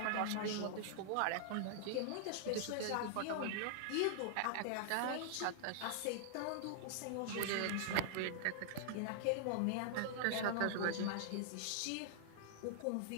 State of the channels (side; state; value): both; different; correlation -0.01